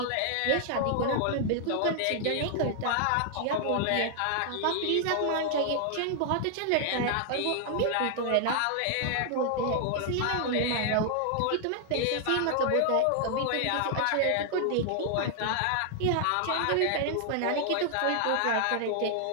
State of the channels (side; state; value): both; different; correlation 0.00